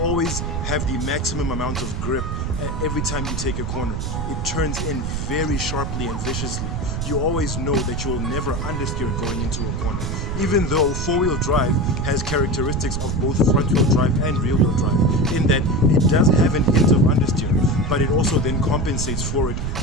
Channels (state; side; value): noise; right; rumble, 3 dB below the sound